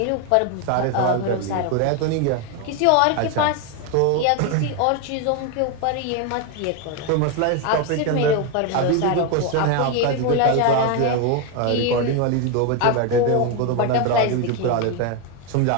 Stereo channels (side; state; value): both; different; correlation 0.01